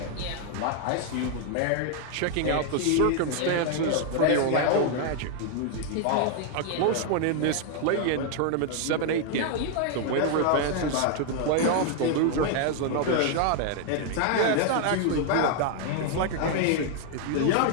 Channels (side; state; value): both; different; correlation 0.00